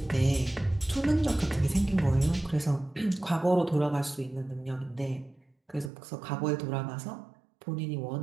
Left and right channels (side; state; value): left; drops out; at 5.9 s